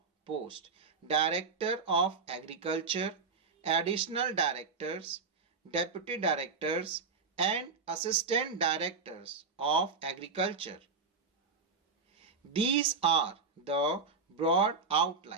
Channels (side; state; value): left; quieter; 4.7 dB